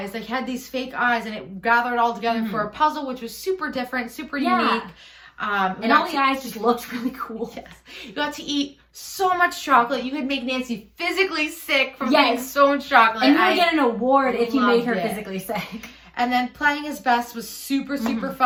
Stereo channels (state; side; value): identical; both; correlation 1.00